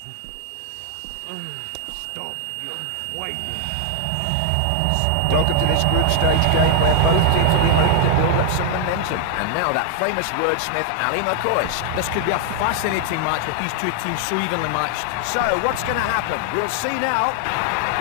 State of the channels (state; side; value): different; both; correlation 0.00